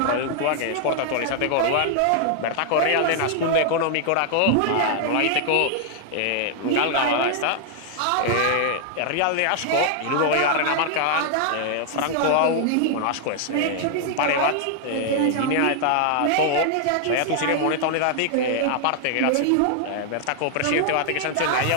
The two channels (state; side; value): different; both; correlation 0.00